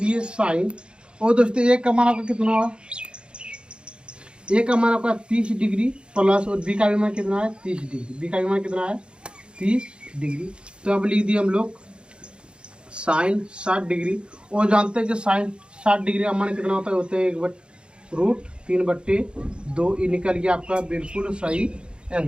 साइन। और दोस्तों ए का मान आपका कितना हुआ? ए का मान आपका 30 डिग्री प्लस, और बी का भी मान कितना है? 30 डिग्री। बी का भी मान कितना है? 30 डिग्री। तो अब लिख दिए हम लोग साइन 60 डिग्री। और जानते हैं कि साइन 60 डिग्री का मान कितना होता है? होते हैं √3/2। ये निकल गया आपका बिल्कुल सही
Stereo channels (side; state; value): left; late; 0.054 ms